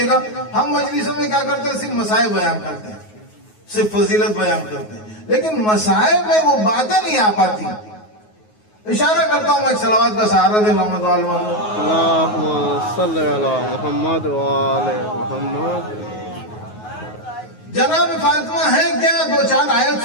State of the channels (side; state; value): right; late; 9.4 ms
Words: گا, ہم مجلسوں میں کیا کرتے ہیں, صرف مسائل بیان کرتے ہیں, صرف فضیلت بیان کرتے ہیں, لیکن مسائل میں وہ باتیں نہیں آ پاتی. اشارہ کرتا ہوں میں, ایک صلوات کا سہارا دے محمد وآل محمد. اللہم صلی علی محمد وآل محمد. جناب فاطمہ ہے کیا, 2-4 آیت